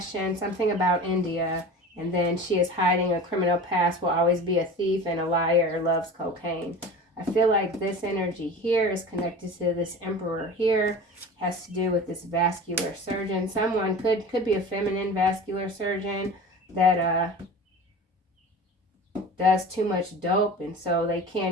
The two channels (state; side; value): normal; both; correlation 0.35